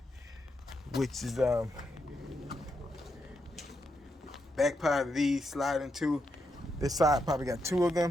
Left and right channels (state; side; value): normal; both; correlation 0.82